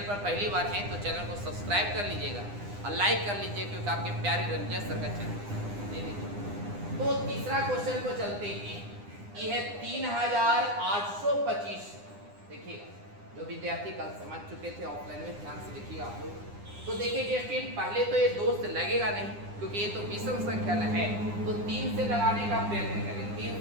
पर पहली बार है तो चैनल को सब्सक्राइब कर लीजिएगा और लाइक कर लीजिए क्योंकि आपके प्यारे रंजन सर का चैनल। तो तीसरा क्वेश्चन को चलते हैं, ये है 3825। देखिए जो विद्यार्थी कल समझ चुके थे ऑफलाइन में ध्यान से देखिए आप लोग। तो देखिए डिस्टेंस पहले तो ये 2 से लगेगा नहीं क्योंकि ये तो विषम संख्या है, तो 3 से लगाने का प्रयत्न करें। 3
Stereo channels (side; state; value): left; late; 9.9 ms